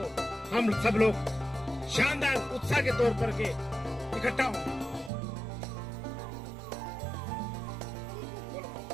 हम सब लोग शानदार उत्साह के तौर पर के इकट्ठा हों।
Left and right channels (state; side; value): drops out; left; at 5.1 s